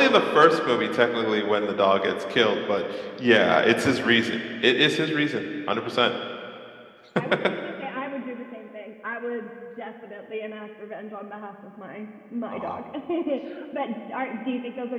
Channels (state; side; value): identical; both; correlation 1.00